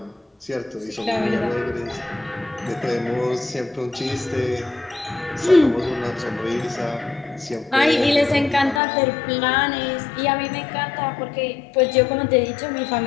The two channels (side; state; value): right; drops out; at 8.8 s